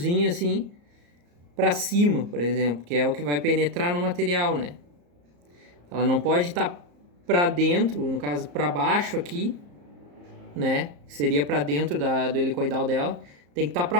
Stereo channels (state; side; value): late; left; 34 ms